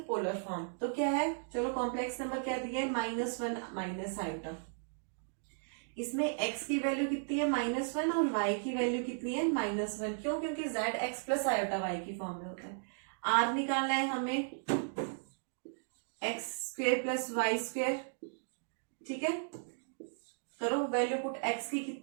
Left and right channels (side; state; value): left; silent; digital silence